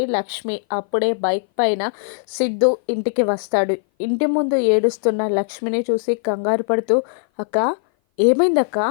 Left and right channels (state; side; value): silent; right; 58 dB below the other